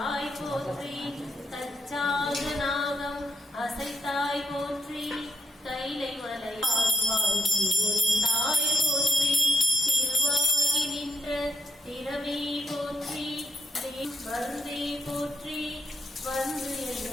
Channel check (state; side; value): normal; both; correlation 0.81